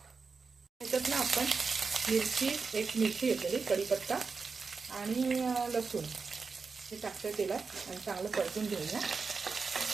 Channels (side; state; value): left; quieter; 4.8 dB